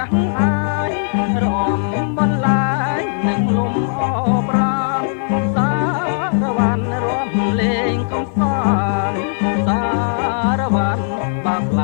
ក់អាយរំបន្លាយនឹងលំអប្រាណសារវ៉ាន់រំលេងកំសាន្តសារវ៉ាន់បាក់ឡ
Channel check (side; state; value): right; silent; 56 dB below the other